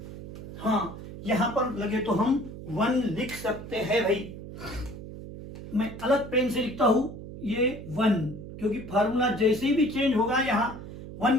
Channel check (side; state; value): right; noise; hum, 12 dB below the sound